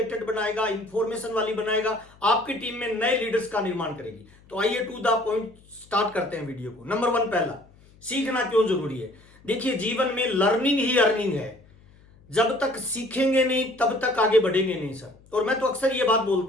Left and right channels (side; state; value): left; noise; hum, 27 dB below the sound